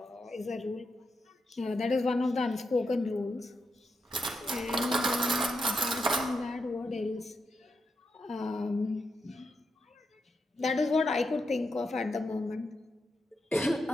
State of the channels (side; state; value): both; normal; correlation 0.84